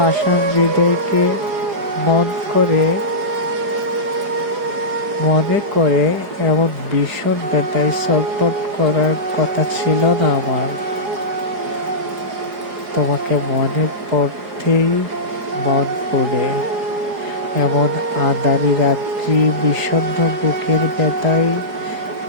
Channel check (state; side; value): late; left; 4.9 ms